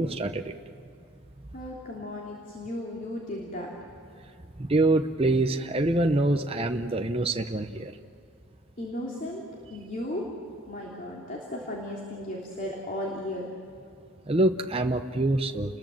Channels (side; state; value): both; normal; correlation 0.60